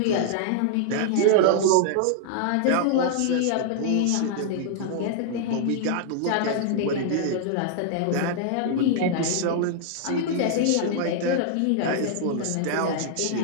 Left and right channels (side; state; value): both; different; correlation -0.01